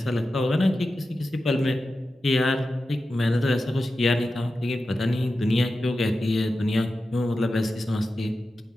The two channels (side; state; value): both; normal; correlation 0.92